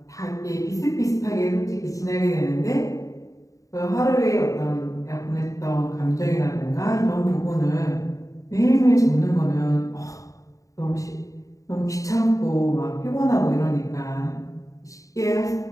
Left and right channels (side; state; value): right; late; 0.16 ms